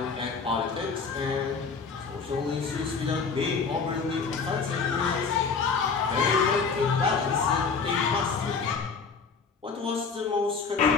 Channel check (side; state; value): right; quieter; 5.1 dB